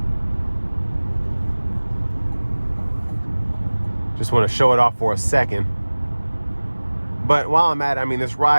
Just want to show it off for a second. But while I'm at it, I mean, this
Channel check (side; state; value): both; inverted; correlation -1.00